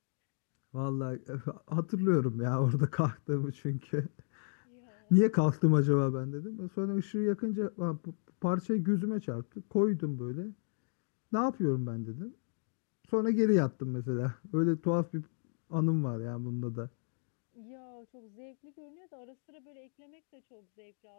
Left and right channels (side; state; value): right; silent; digital silence